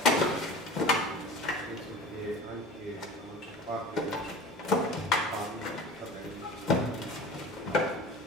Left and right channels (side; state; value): both; normal; correlation 0.38